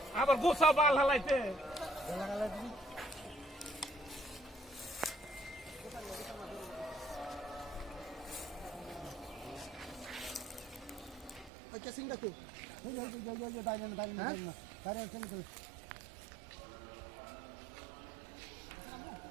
আবার গোসা বাল হালাইতে কেসিং দেখো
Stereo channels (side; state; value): left; drops out; at 11.5 s